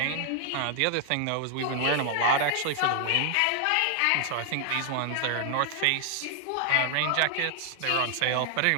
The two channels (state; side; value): different; both; correlation 0.00